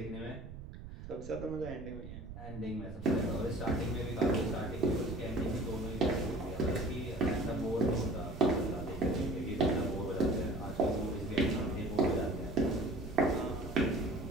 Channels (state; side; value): noise; right; rumble, 12 dB below the sound